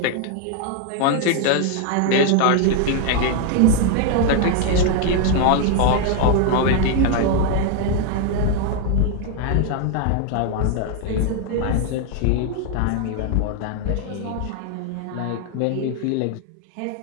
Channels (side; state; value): both; different; correlation 0.00